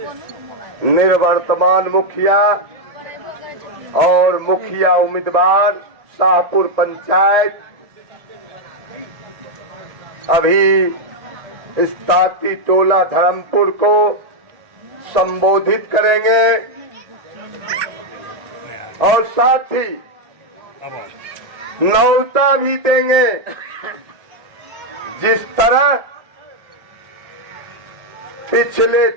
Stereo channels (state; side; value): late; left; 1.7 ms